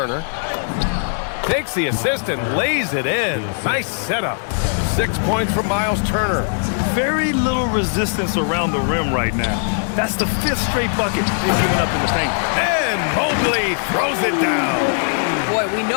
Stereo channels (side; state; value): right; silent; 66 dB below the other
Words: Takes the assist and lays it in. Nice setup. 6 points from Miles Turner. Very little resistance around the rim right now. That's the 5th straight bucket they've given up in the paint. And Mobley throws it down. Boy, we